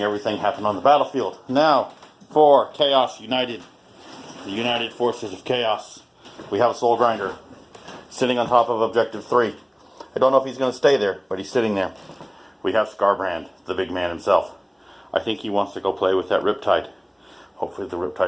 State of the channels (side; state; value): both; identical; correlation 1.00